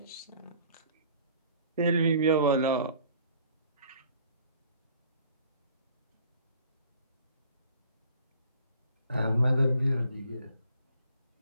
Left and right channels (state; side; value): inverted; both; correlation -0.54